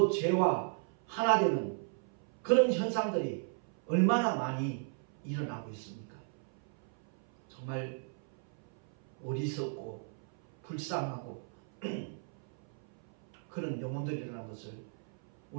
죄와 하나 되는 그런 현상들이 얼마나 많이 일어나고 있습니까? 정말 어리석고 불쌍하고 그런 영혼들이라는 것을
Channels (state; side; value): silent; left; 54 dB below the other